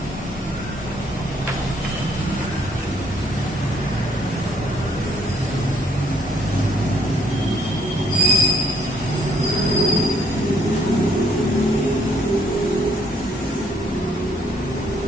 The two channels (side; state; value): both; normal; correlation 0.66